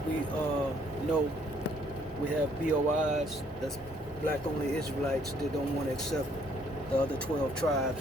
we know, we have BOIs, that's black only Israelites that don't want to accept the other 12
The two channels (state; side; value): normal; both; correlation 0.65